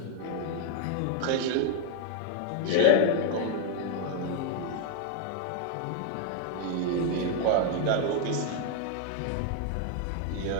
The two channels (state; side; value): different; both; correlation 0.01